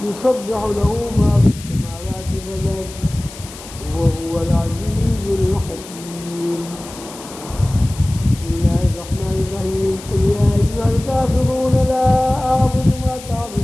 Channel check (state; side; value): noise; left; hiss, 16 dB below the sound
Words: يسبح له ما في السماوات والأرض وهو العزيز الحكيم. بسم الله الرحمن الرحيم. قل يا أيها الكافرون لا أعبد ما